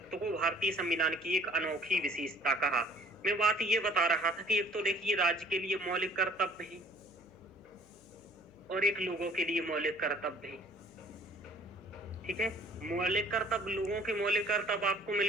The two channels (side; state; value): left; noise; hum, 27 dB below the sound